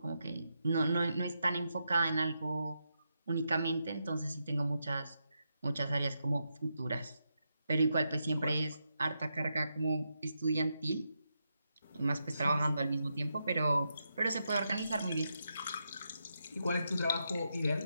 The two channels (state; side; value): inverted; both; correlation -0.84